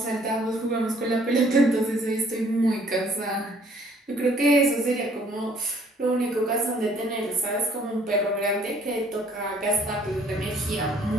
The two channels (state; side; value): normal; both; correlation 0.60